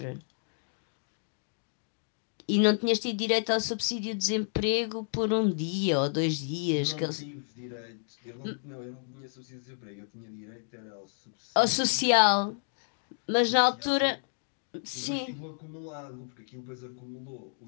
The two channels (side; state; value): right; silent; digital silence